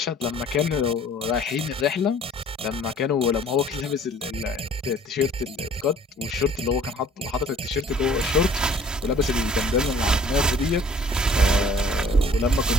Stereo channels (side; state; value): both; normal; correlation 0.54